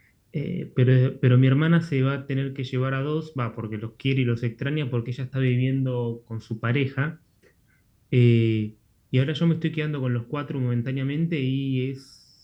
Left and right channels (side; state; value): both; identical; correlation 1.00